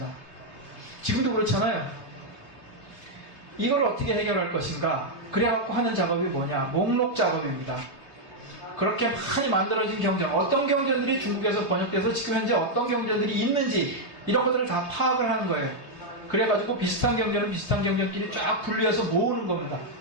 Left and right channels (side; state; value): right; late; 3.4 ms